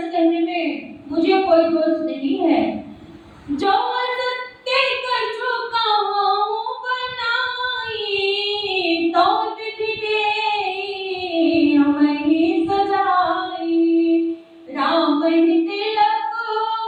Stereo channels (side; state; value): both; identical; correlation 1.00